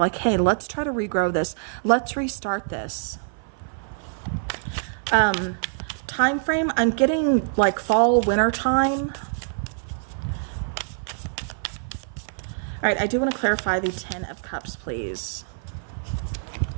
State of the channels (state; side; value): silent; left; 56 dB below the other